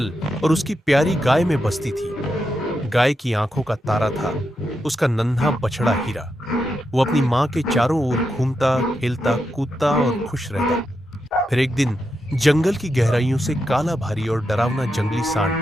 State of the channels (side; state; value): both; normal; correlation 0.86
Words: और उसकी प्यारी गाय में बसती थी। गाय की आंखों का तारा था उसका नन्हा बछड़ा हीरा। वो अपनी माँ के चारों ओर घूमता खेलता कूदता और खुश रहता। फिर एक दिन जंगल की गहराइयों से काला भारी और डरावना जंगली